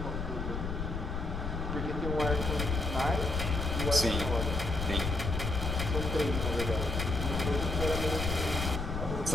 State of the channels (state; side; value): noise; left; rumble, 4 dB below the sound